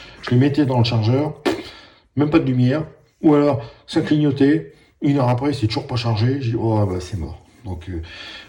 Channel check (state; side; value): identical; both; correlation 1.00